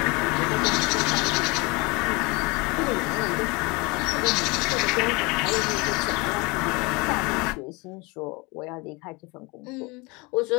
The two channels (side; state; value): right; quieter; 26.5 dB